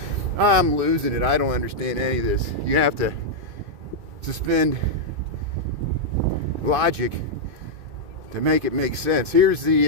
I'm losing it. I don't understand any of this. You have to suspend logic to make it make sense. Here's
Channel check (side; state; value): left; late; 2.5 ms